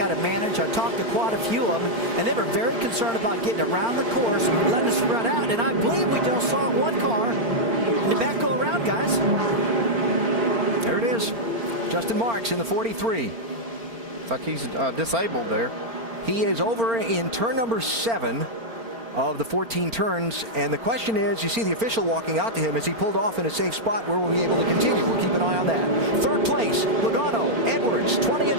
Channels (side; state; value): left; late; 4.4 ms